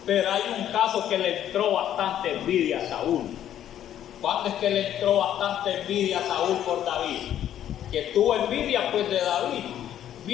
pero hay un caso que le entró bastante envidia a Saúl. ¿Cuándo es que le entró bastante envidia a Saúl por David? Que tuvo envidia, pues, de David.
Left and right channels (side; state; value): right; quieter; 11.0 dB